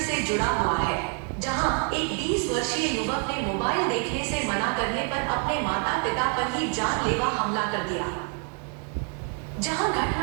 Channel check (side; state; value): left; quieter; 38.4 dB